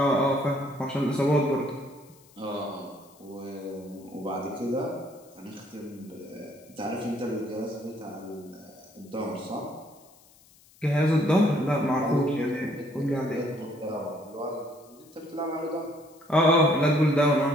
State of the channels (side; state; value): left; noise; hiss, 27 dB below the sound